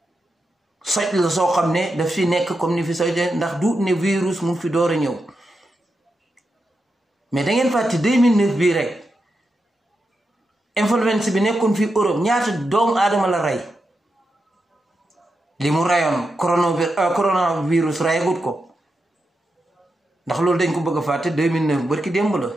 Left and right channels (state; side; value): normal; both; correlation 0.87